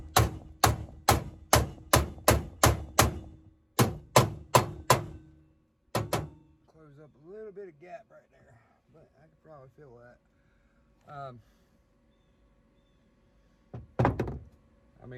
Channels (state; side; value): identical; both; correlation 1.00